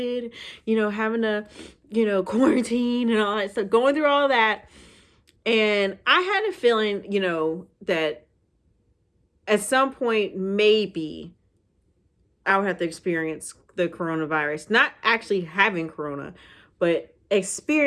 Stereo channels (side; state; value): both; identical; correlation 1.00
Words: having to, quarantine and all that stuff, going through all that. And I had a feeling, that at some point, maybe I would have to experience the coronavirus, not actually having corona, but